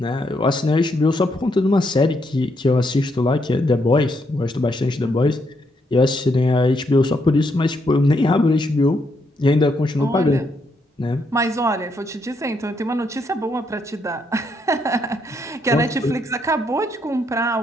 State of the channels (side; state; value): both; normal; correlation 0.76